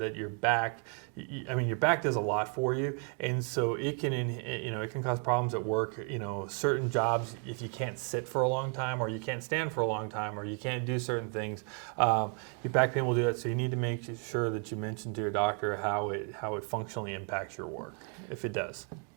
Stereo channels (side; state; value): left; quieter; 39.5 dB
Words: your back. I mean, your back does a lot for you, and so it can, it can cause problems at work. You know, certain jobs, if you can't sit for a long time, or you can't stand for a long time, or you can't do certain things, your back pain will do that. So you need to make sure that you mention to your doctor how it functionally impacts your work, if it does.